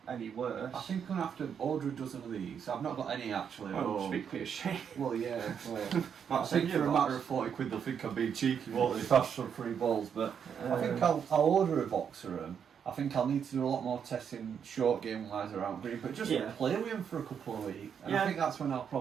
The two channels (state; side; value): quieter; left; 7.6 dB